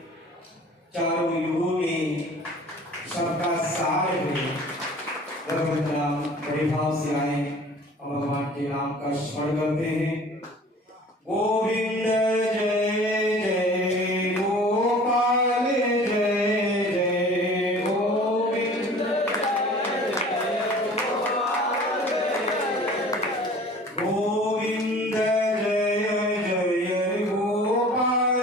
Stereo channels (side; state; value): both; normal; correlation 0.46